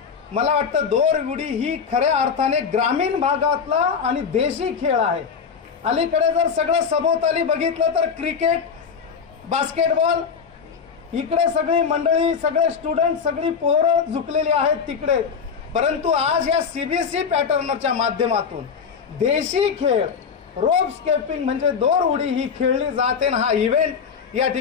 मला वाटतं दोर उडी ही खऱ्या अर्थाने ग्रामीण भागातला आणि देशी खेळ आहे। अलीकडे जर सगळं सभोवताली बघितलं तर क्रिकेट, बास्केटबॉल, इकडे सगळी मंडळी, सगळे स्टुडंट, सगळी पोरं झुकलेली आहेत तिकडे. परंतु आज या सीबीएसई पॅटर्नच्या माध्यमातून देशी खेळ, रोप स्केपिंग म्हणजे दोर उडी ही खेळली जाते. हा इव्हेंट या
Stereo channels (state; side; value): quieter; right; 6.3 dB